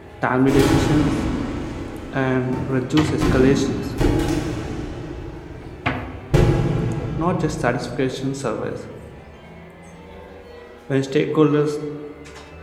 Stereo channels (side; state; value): both; identical; correlation 1.00